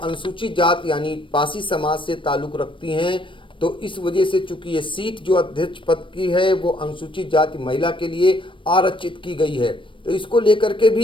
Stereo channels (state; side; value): late; right; 0.25 ms